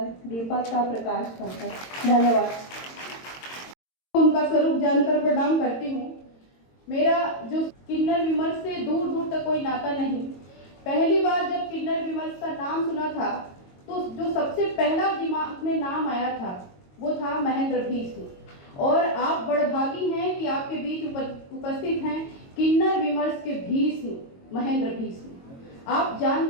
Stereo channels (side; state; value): right; late; 22 ms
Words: दीपक का प्रकाश बनकर। धन्यवाद। उनका स्वरूप जानकर प्रणाम करती हूँ। मेरा जो किन्नर विमर्श से दूर दूर तक कोई नाता नहीं। पहली बार जब किन्नर विमर्श का नाम सुना था तो जो सबसे पहला दिमाग में नाम आया था वो था महेंद्र भीष्म। और आप बड़भागी हैं कि आपके बीच उपस्थित हैं किन्नर विमर्श के भीष्म महेंद्र भीष्म। आप